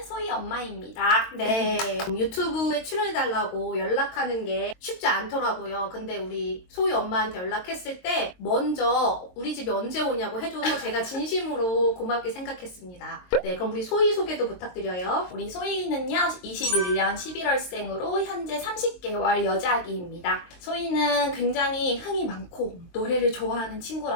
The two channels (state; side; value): late; right; 22 ms